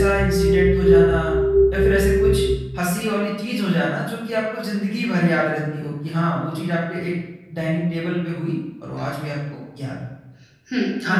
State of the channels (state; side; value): identical; both; correlation 1.00